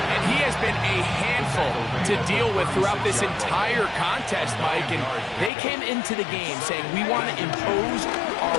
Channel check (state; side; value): drops out; right; at 5.5 s